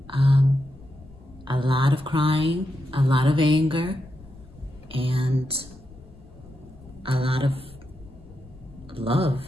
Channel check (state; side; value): noise; left; rumble, 21 dB below the sound